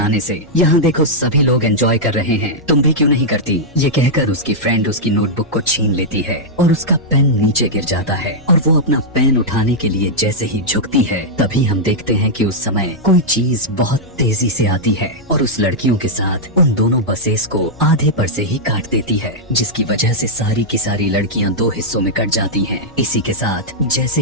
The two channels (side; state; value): both; normal; correlation -0.07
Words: से? यहाँ देखो सभी लोग एंजॉय कर रहे हैं, तुम भी क्यों नहीं करती? ये कहकर उसकी फ्रेंड उसकी नोटबुक को छीन लेती है और उसका पेन नीचे गिर जाता है और वो अपना पेन उठाने के लिए जैसे ही झुकती है, तभी हम देखते हैं कि उस समय कोई चीज बहुत तेजी से आती है और उस लड़कियों के साथ उन दोनों बसेस को आधे पर से ही काट देती है, जिसकी वजह से सारी की सारी लड़कियां दो हिस्सों में कट जाती हैं। इसी के साथ जैसे